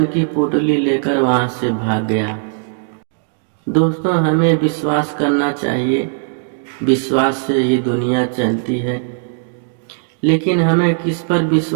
की पोटली लेकर वहां से भाग गया। दोस्तों, हमें विश्वास करना चाहिए। विश्वास से ही दुनिया चलती है। लेकिन हमें किस पर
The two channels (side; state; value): left; silent; digital silence